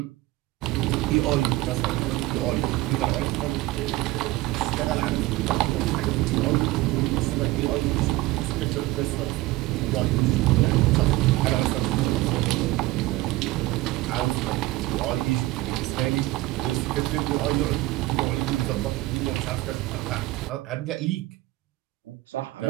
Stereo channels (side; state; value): left; quieter; 18.5 dB